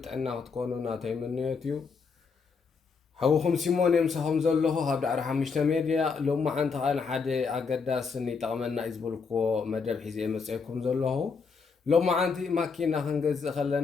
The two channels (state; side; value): quieter; right; 5.2 dB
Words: ጥዕና ክትኮኑ ናተይ ምንዮት እዩ። ሓዊኹም ሲሞን የምሳኹም ዘለኹ ኣብ ዳዕሮ ሓሙሽተ ሚድያ ሎማዓንቲ ከዓ ንሓደ ኣገዳስን ይጠቕመና እዩ ዝበልክዎ መደብ ሒዘ መፅአኩም ዘለኹ። ሎማዓንቲ ማኪና ክንገዝእ